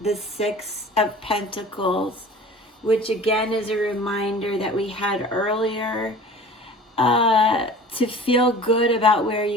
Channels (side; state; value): both; normal; correlation 0.42